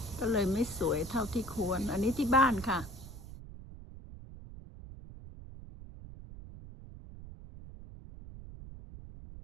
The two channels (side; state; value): right; noise; rumble, 14 dB below the sound